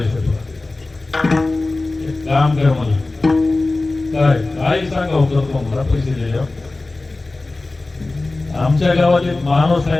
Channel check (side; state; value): right; quieter; 3.2 dB